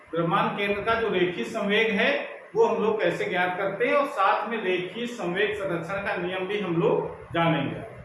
द्रव्यमान केंद्र का जो रेखीय संवेग है वो हम लोग कैसे ज्ञात करते हैं, और साथ में रेखीय संवेग संरक्षण का नियम भी हम लोग जानेंगे।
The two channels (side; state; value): both; identical; correlation 1.00